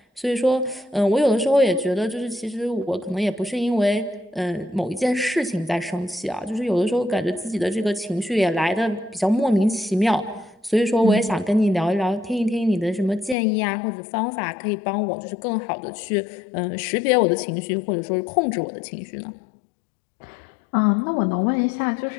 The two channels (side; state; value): right; drops out; at 13.4 s